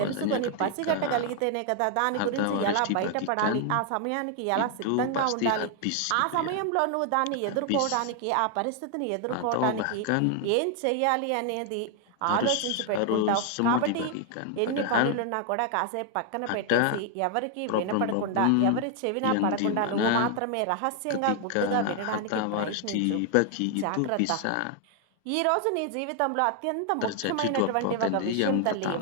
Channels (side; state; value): both; different; correlation 0.00